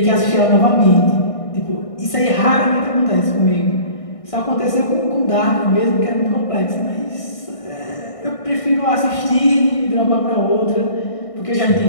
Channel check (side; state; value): right; late; 1.6 ms